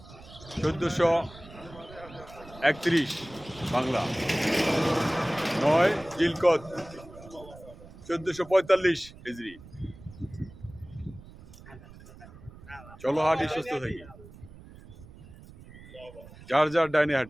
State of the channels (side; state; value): right; noise; rumble, 19 dB below the sound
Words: 1431 বাংলা, 9 জিলকদ 1445 হিজরি। চলো হাঁটি সুস্থ থাকি, যার যার ডাইনে